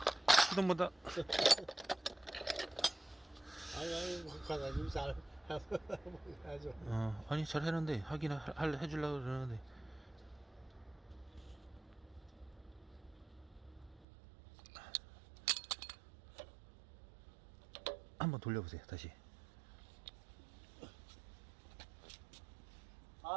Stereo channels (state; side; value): drops out; left; at 14.1 s